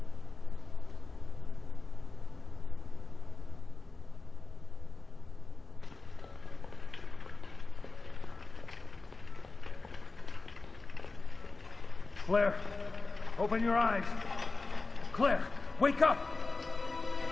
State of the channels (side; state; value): right; quieter; 3.6 dB